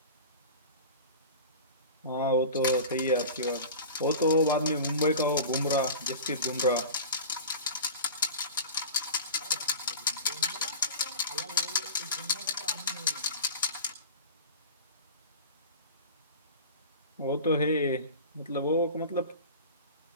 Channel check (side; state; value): both; inverted; correlation -0.34